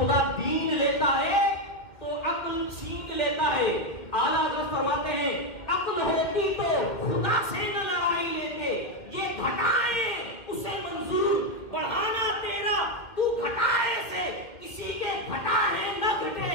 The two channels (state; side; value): late; right; 2.4 ms